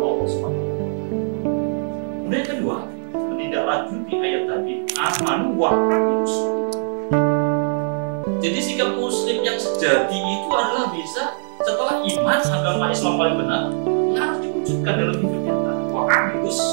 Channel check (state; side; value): silent; left; digital silence